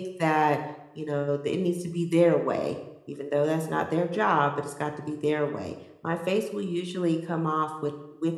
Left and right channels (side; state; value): both; identical; correlation 1.00